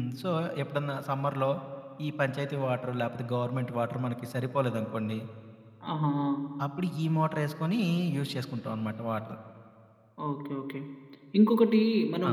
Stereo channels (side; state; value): both; identical; correlation 1.00